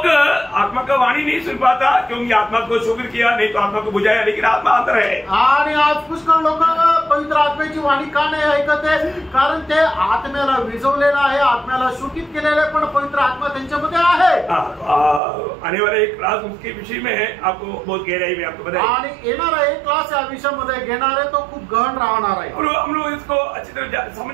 आत्मा का वाणी नहीं सुन पाता क्योंकि आत्मा को शोकित किया, नहीं तो आत्मा को बुझाया, लेकिन आत्मा अंदर है। आणि आज पुष्कळ लोक पवित्र आत्म्याची वाणी का नाही ऐकत आहे? कारण ते आत्म्याला विझवलेलं आहे, आत्म्याला शोकित केलेलं आहे, पण पवित्र आत्मा त्यांच्यामध्ये आहे। आने वाला एक क्लास उसके विषय में है, आपको बहुत गहराई में आपको बताएं। आणि येणारा एक क्लास या विषयामध्ये घेणार आहे तो खूप गहन राहणार आहे। हम लोग इसको अच्छी तरह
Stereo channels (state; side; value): drops out; left; at 15.2 s